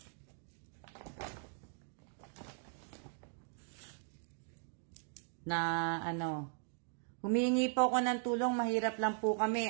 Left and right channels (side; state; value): left; silent; 52 dB below the other